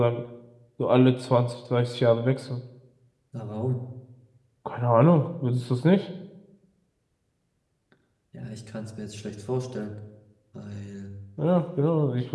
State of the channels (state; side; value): identical; both; correlation 1.00